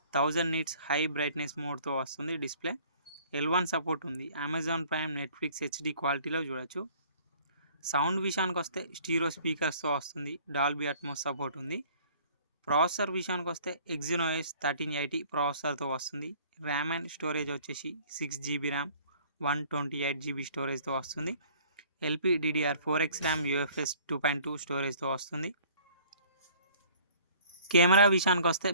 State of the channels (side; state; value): both; inverted; correlation -0.53